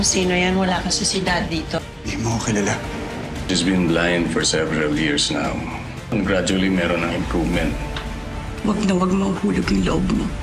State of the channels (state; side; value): identical; both; correlation 1.00